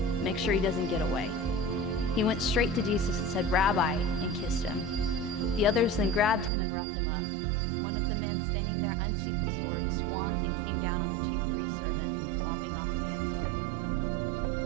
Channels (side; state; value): left; drops out; at 6.5 s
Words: "Make sure he doesn't get away." He went straight to Jesus and said, "Rabbi," and kissed him. The others then grabbed him and roughed him up. One of the men standing there unsheathed the sword, swung, and came down on the chief priest's servant, lopping off the man's ear.